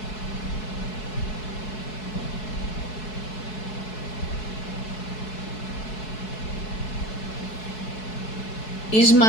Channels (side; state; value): right; late; 4.7 ms